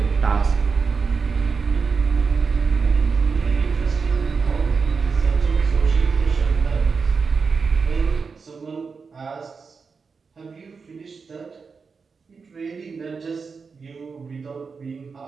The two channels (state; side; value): quieter; left; 5.1 dB